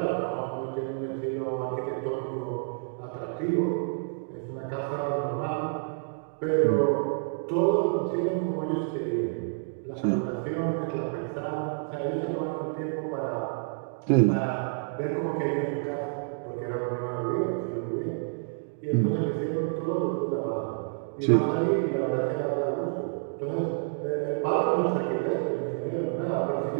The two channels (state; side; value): silent; left; digital silence